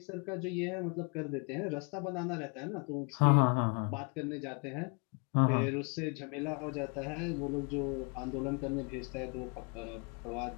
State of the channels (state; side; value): quieter; right; 35.2 dB